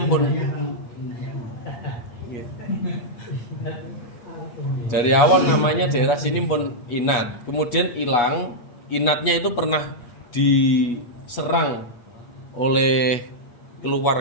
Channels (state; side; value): late; right; 8.3 ms